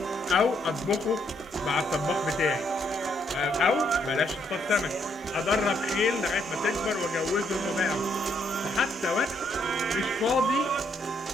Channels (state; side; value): normal; both; correlation 0.72